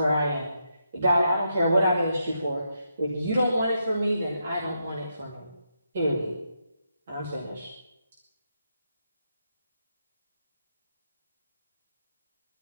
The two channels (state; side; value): inverted; both; correlation -0.81